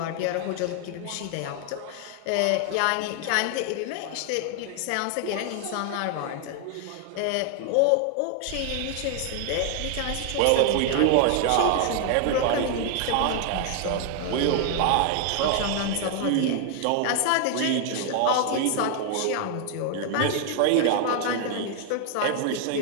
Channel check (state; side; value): different; both; correlation 0.00